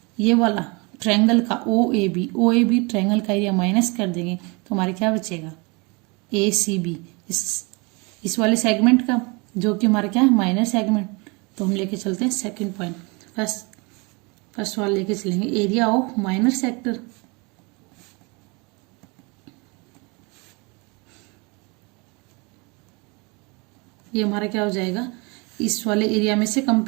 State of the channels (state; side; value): quieter; left; 28.9 dB